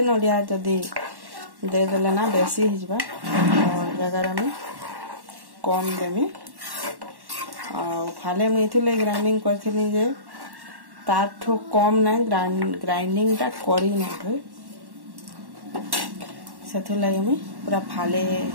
नडिया जदी दे देले ना बेसी हिजबा और जगह में कम देमी आ फाले में इथिले ग्राइंडिंग करथिनी जे ताठो कम ना ग्राइंडिंग टा करी ना थई सेथु लागि में पूरा फाले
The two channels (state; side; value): late; left; 1.1 ms